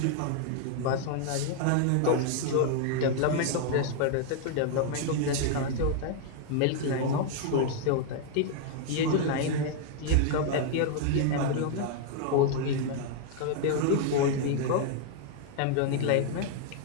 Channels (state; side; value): different; both; correlation 0.00